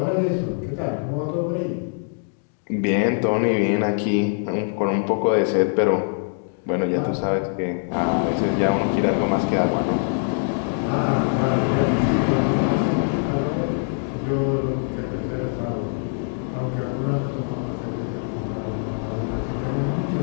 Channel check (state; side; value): silent; right; 59 dB below the other